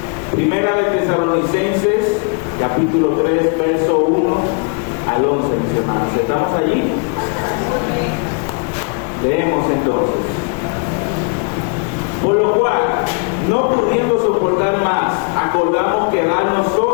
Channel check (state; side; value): quieter; right; 37.1 dB